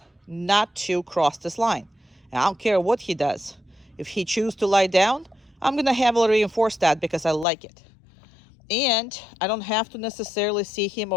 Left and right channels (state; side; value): drops out; right; at 7.5 s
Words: not to cross this line. And I don't care what he does. If he chooses to lie down, I'm gonna heavily reinforce that because I like it. And I don't have to necessarily see him